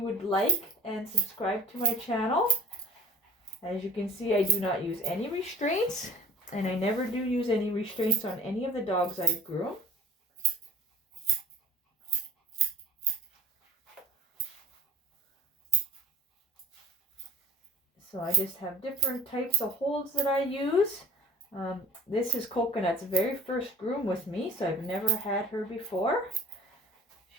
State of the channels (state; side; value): normal; both; correlation 0.46